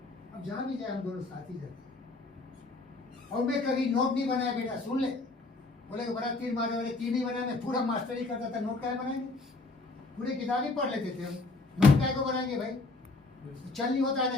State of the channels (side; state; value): right; quieter; 3.4 dB